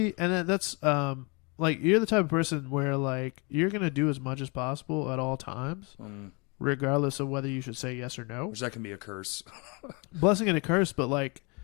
and that's like you're the type of person where like you're gonna do as much as possible at all times, regardless of whether you should say yes or no. Which that can be a curse. Blessing and a curse, but like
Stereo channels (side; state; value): right; quieter; 31.1 dB